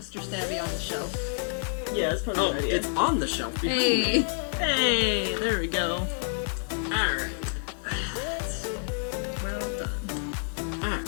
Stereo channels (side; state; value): right; silent; 59 dB below the other